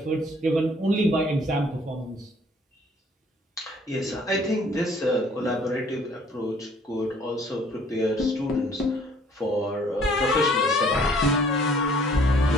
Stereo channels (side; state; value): both; normal; correlation 0.58